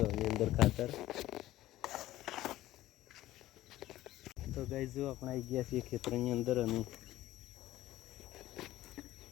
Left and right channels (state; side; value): quieter; right; 15.2 dB